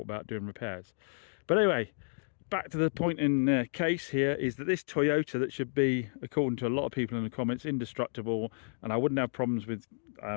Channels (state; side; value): silent; right; digital silence